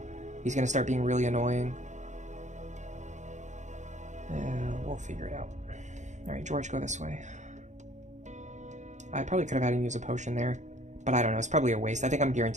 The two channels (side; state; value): left; late; 0.35 ms